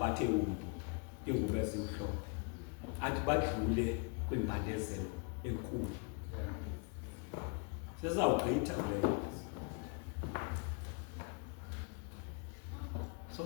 ingubo ezimhlophe athi badlule kwimbandezelo enkulu. Sezawugqitha leyo. So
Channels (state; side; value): quieter; right; 35.8 dB